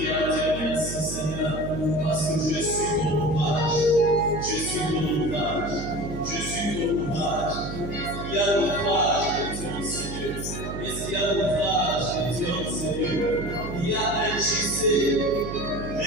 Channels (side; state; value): right; noise; hum, 7 dB below the sound